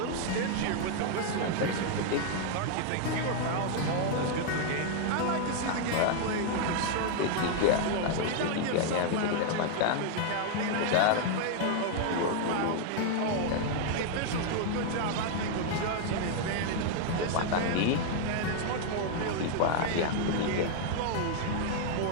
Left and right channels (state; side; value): different; both; correlation 0.00